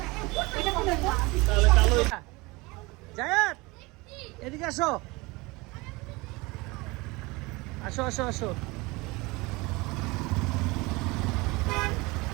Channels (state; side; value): quieter; left; 23.8 dB